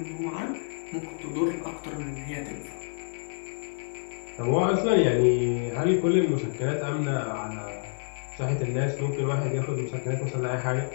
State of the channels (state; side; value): silent; right; 56 dB below the other